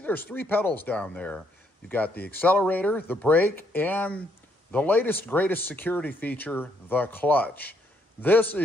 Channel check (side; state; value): both; normal; correlation 0.72